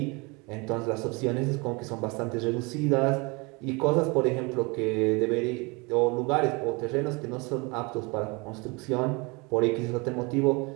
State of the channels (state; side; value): quieter; left; 28.0 dB